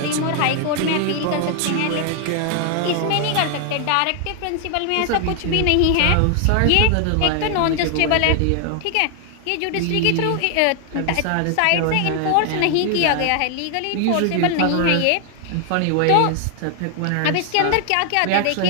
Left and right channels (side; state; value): both; different; correlation 0.00